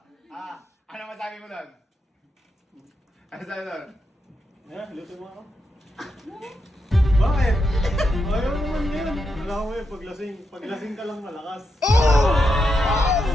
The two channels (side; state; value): both; normal; correlation 0.84